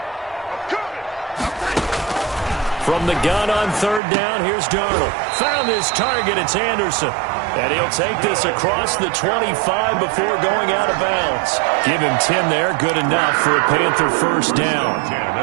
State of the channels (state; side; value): drops out; left; at 4.0 s